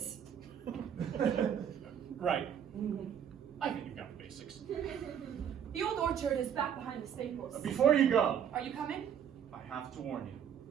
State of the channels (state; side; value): quieter; left; 8.8 dB